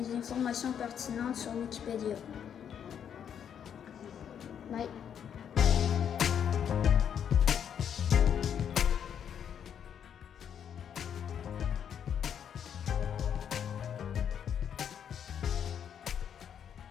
informations pertinentes sur Wikipédia. Bye.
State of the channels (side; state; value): right; quieter; 8.5 dB